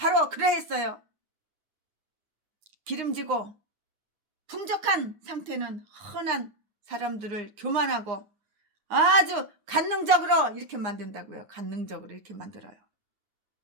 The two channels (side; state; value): left; late; 9.6 ms